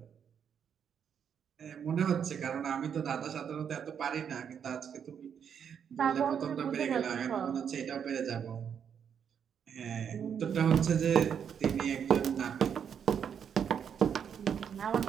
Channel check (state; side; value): quieter; left; 7.8 dB